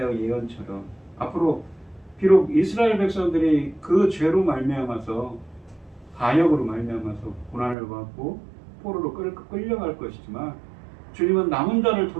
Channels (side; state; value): left; drops out; at 7.8 s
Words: 예언처럼 앞으로 비록 이스라엘 백성들이 그 죄로 말미암아서 반역으로 말미암아서 고난을 받고 포로로 끌려갈 것이지만 주님은 남은 자를